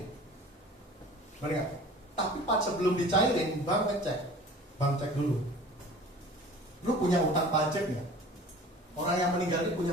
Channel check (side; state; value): both; normal; correlation 0.44